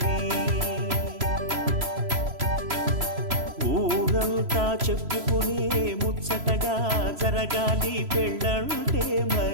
ఊరంతా చెప్పుకునే ముచ్చటగా జరగాలి పెళ్ళంటే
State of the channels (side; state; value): left; late; 3.0 ms